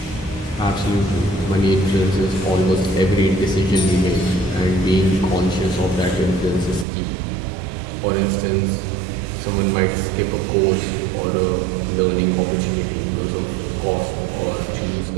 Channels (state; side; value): drops out; left; at 6.9 s